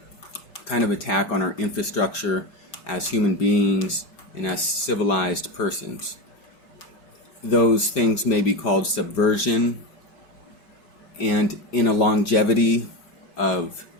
kind of attack on our infrastructure as human beings and as civilized persons. Those things may be called subversion, and in a longevity of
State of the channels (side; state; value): right; late; 5.1 ms